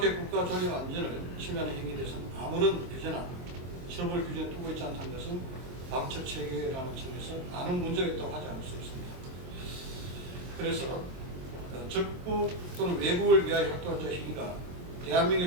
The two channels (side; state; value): left; late; 23 ms